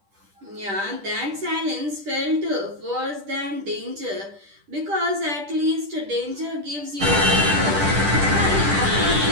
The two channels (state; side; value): late; left; 10 ms